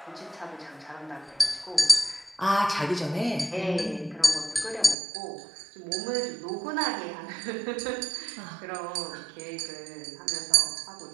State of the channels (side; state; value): left; drops out; at 5.0 s